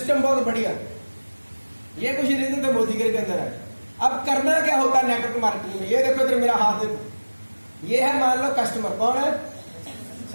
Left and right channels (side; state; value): both; inverted; correlation -1.00